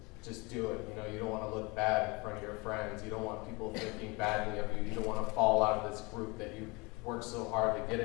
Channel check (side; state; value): right; quieter; 26.9 dB